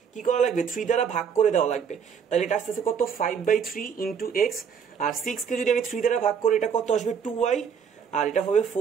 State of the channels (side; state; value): left; quieter; 7.0 dB